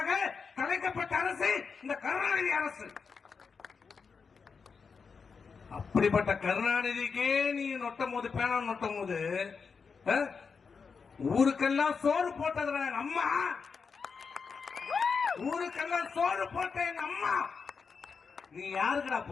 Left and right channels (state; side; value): quieter; right; 5.4 dB